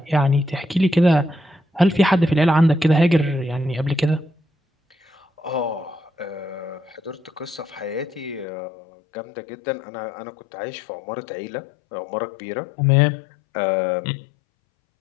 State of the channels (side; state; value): right; drops out; at 8.5 s